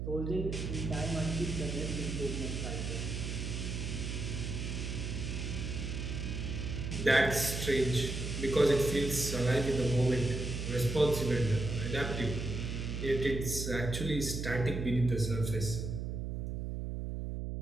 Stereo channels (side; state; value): right; noise; hum, 4 dB below the sound